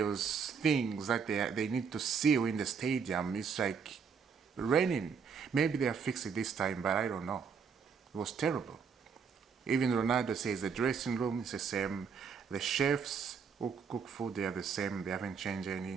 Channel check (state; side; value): quieter; left; 6.2 dB